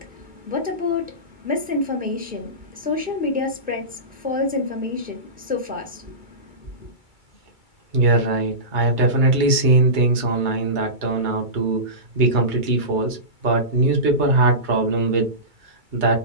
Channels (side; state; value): left; late; 2.3 ms